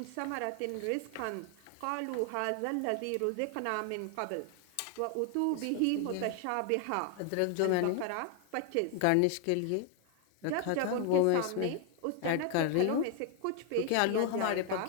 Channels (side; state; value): both; different; correlation 0.00